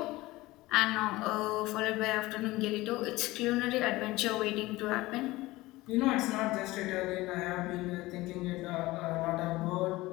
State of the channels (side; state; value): right; quieter; 19.3 dB